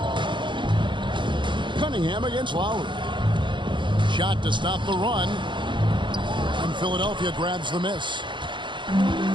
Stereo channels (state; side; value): late; left; 0.23 ms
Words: Cunningham against Lowry. Shot to stop the run. And Philadelphia grabs the miss.